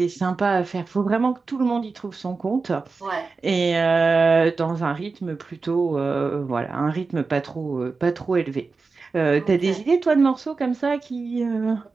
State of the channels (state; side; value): quieter; left; 4.3 dB